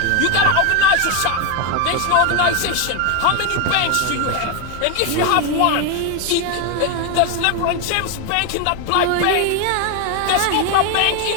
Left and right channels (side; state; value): both; different; correlation 0.02